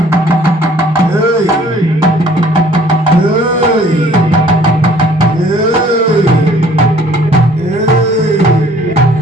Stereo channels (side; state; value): both; normal; correlation 0.56